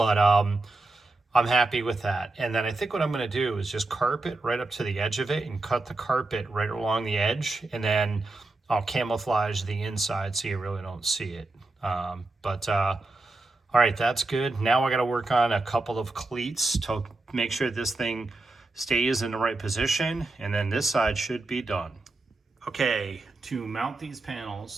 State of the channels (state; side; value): quieter; left; 3.1 dB